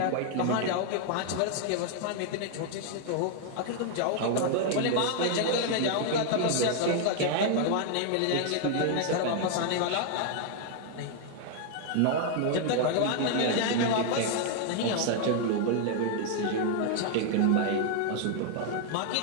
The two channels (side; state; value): both; different; correlation 0.00